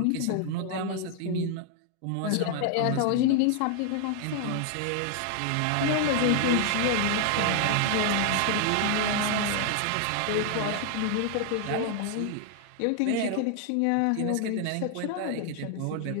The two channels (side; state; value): both; different; correlation 0.00